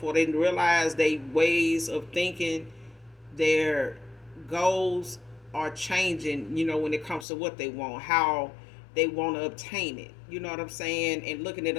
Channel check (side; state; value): right; drops out; at 7.2 s